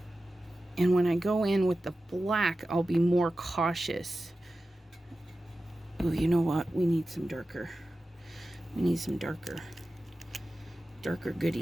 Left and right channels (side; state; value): both; normal; correlation 0.94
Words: And when I go in with the black, I'll be more cautious. Oh, you know what? We need some darker. We need some darker